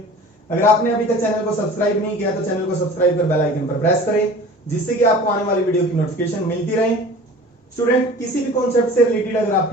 अगर आपने अभी तक चैनल को सब्सक्राइब नहीं किया तो चैनल को सब्सक्राइब कर बेल आइकन पर प्रेस करें, जिससे कि आपको आने वाली वीडियो की नोटिफिकेशन मिलती रहे। स्टूडेंट, किसी भी कॉन्सेप्ट से रिलेटेड अगर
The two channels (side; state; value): both; normal; correlation 0.42